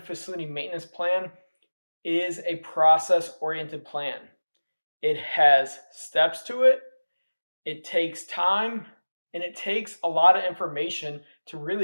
facility maintenance plan is a process oriented plan. It has steps to it, it takes time, and it takes a lot of information to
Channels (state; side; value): inverted; both; correlation -1.00